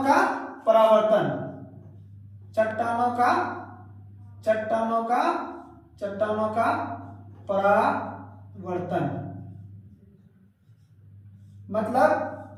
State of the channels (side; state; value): both; identical; correlation 1.00